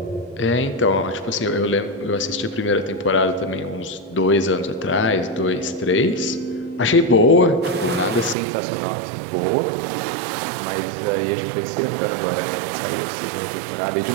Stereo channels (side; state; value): left; drops out; at 8.3 s